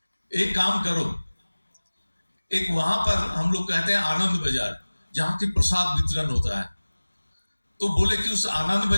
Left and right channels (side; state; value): both; inverted; correlation -1.00